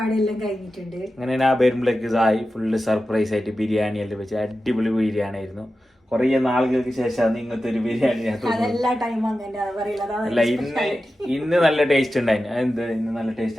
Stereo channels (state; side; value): normal; both; correlation 0.93